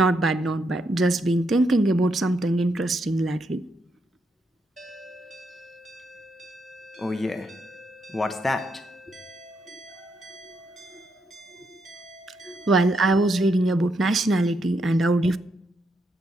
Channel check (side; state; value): both; normal; correlation 0.79